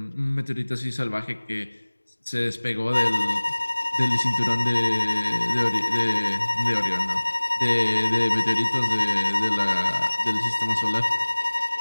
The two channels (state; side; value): inverted; both; correlation -1.00